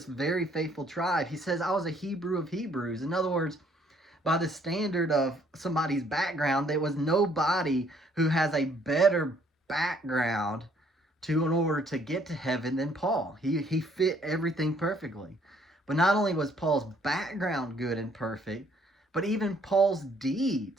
very faithful tribe. He says, I was a Hebrew of Hebrews. In other words, by the standard of somebody's background, there was nobody who has a better background in order to get to heaven than Paul. He fit everything perfectly. But not only was Paul's background good and perfect, but even Paul's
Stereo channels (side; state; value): both; normal; correlation 0.64